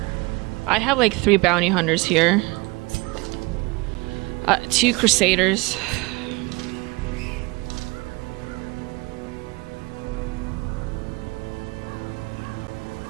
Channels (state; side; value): quieter; left; 25.2 dB